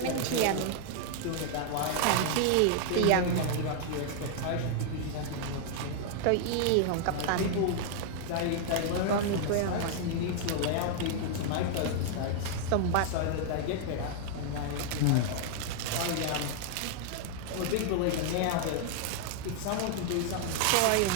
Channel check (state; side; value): different; both; correlation 0.00